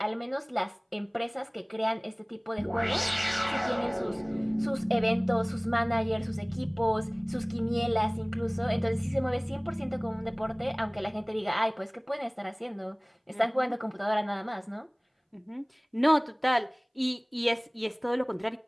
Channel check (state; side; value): identical; both; correlation 1.00